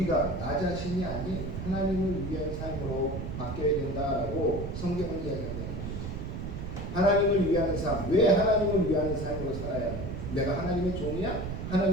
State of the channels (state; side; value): noise; right; rumble, 6 dB below the sound